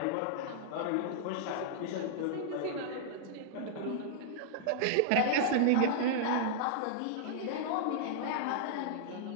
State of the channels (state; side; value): different; both; correlation -0.01